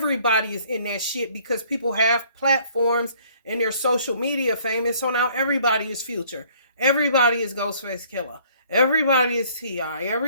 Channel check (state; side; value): inverted; both; correlation -0.59